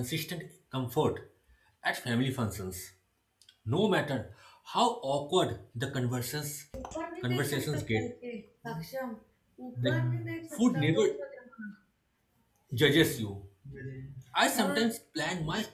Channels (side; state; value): both; identical; correlation 1.00